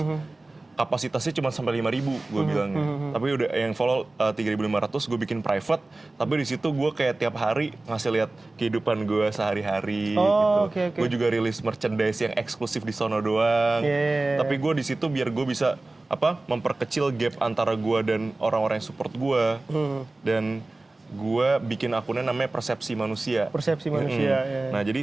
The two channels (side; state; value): left; quieter; 3.0 dB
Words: Kapasitasnya cuma sampai 5.000 gue bilangnya. Tapi udah yang follow 3.500 gue bikin private. Tapi di situ gue kayak tiap hari ngasih lihat kehidupan gue sehari-hari gitu. Okay. Gue juga rilis merchandise yang eksklusif di sono doang. Yeah. Tapi gue di situ biar gue bisa memperkecil gap antara gue dan orang-orang yang support gue. Dan gue bikin akunnya namanya Persepsi Manusia. Persepsi Manusia. Ya. Nah jadi